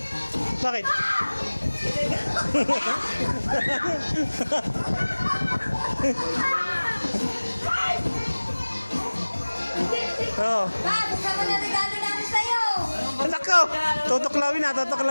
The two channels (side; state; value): both; inverted; correlation -1.00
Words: Bakit? Oh. Bob, buksan mo na regalo namin sa'yo. Nako! Tutuklawin na,